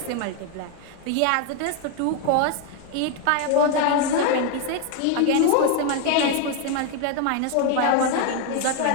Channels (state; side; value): different; both; correlation 0.01